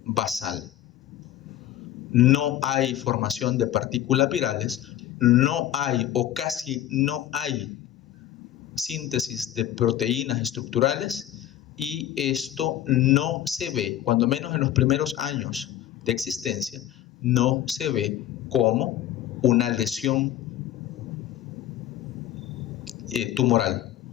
basal. No hay formación de partículas virales, no hay o casi no hay síntesis de proteínas estructurales, y esto no se ve, cuando menos en los primeros años de existencia, no se ve como una lesión tumoral,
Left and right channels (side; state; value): right; quieter; 12.2 dB